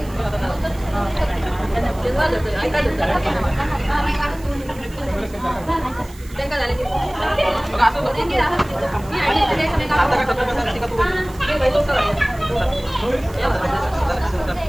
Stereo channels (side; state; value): right; noise; hiss, 22 dB below the sound